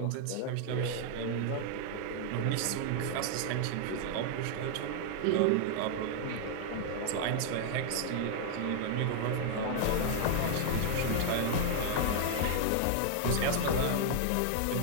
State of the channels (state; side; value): different; both; correlation -0.01